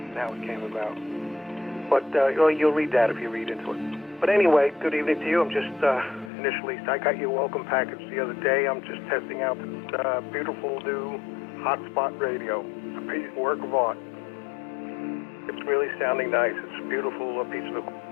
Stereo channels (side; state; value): right; drops out; at 6.3 s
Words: How it came about. But you'll read that if you read into it. But anyway, good evening to you. I'm just initially, I got your welcome package the other day. I'm just testing out this beautiful new hotspot radio. It's a work of art. It's really sounding nice. It's a beautiful piece of